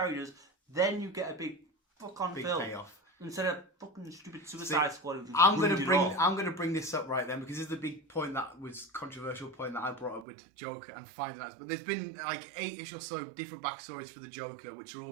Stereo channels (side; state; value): left; drops out; at 10.2 s